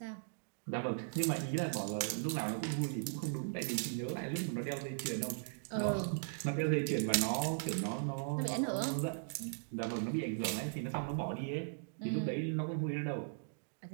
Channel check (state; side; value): silent; left; digital silence